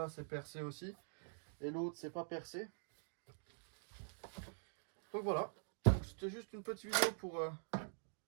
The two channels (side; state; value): left; silent; digital silence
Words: c'est percé aussi. Et l'autre, c'est pas percé. Donc voilà. C'était juste une petite vidéo pour